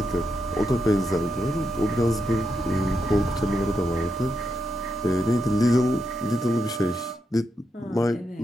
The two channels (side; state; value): both; normal; correlation 0.84